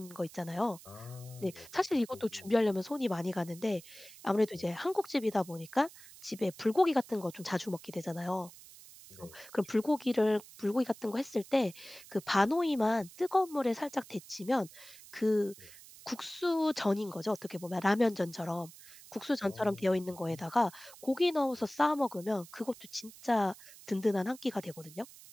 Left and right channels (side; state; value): right; noise; hiss, 19 dB below the sound